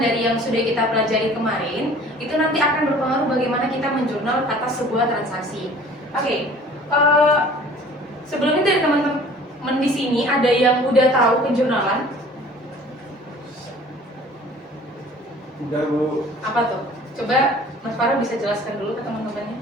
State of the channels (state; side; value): normal; both; correlation 0.49